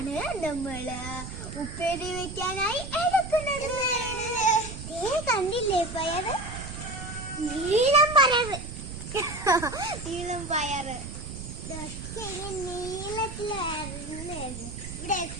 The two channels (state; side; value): noise; right; rumble, 9 dB below the sound